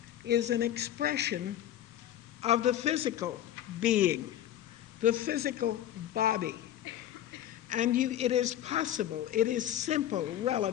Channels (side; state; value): right; quieter; 11.7 dB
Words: is an expression of the physical being, the physical body. And it is possible, it is simple